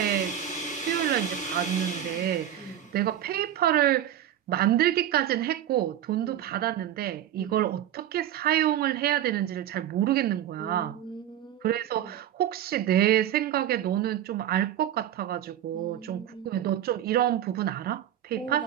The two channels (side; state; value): left; quieter; 11.0 dB